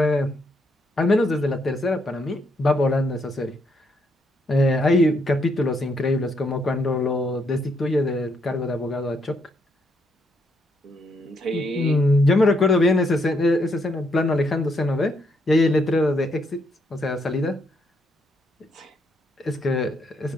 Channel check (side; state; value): both; normal; correlation 0.75